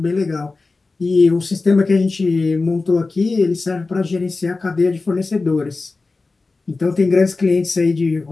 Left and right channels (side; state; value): right; quieter; 3.7 dB